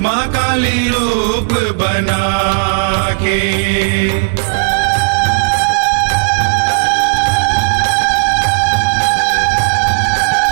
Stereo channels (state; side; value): silent; left; digital silence